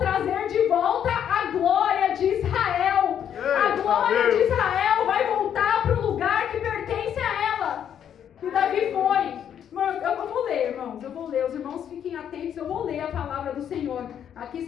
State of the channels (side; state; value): right; quieter; 9.2 dB